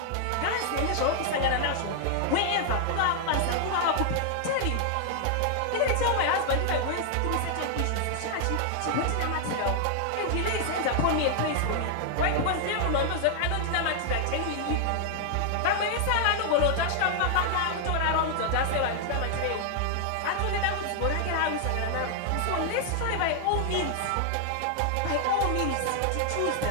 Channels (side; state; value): both; different; correlation 0.00